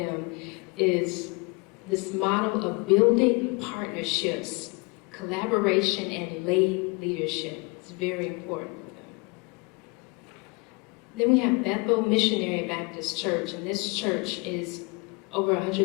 is this model of building partnerships, collaboration, and lay leadership. It's very important for them. Then we have Bethel Missionary Baptist Church, and this church is over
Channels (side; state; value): right; quieter; 29.3 dB